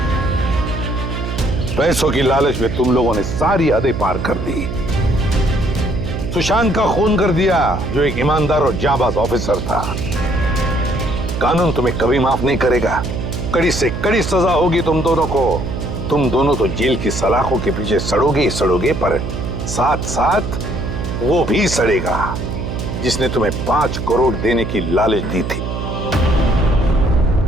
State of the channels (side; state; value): right; noise; hum, 5 dB below the sound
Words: पैसों की लालच में तुम लोगों ने सारी हदें पार कर दी। सुशांत का खून कर दिया, जो एक ईमानदार और जाबाज ऑफिसर था। कानून तुम्हें कभी माफ नहीं करेगा। कड़ी से कड़ी सजा होगी तुम दोनों को। तुम दोनों तो जेल की सलाखों के पीछे सड़ोगे ही सड़ोगे, पर साथ साथ वो भी सड़ेगा जिसने तुम्हें 5 करोड़ देने की लालच दी थी।